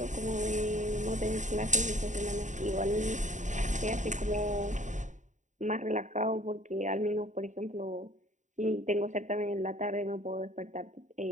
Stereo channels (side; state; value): left; late; 0.36 ms